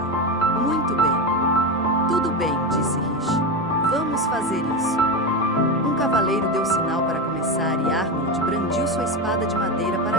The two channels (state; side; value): normal; both; correlation 0.16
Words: Muito bem. Tudo bem, disse Rishi. Vamos fazer isso. Um cavaleiro deu sinal para começar e Arnold brandiu sua espada de madeira para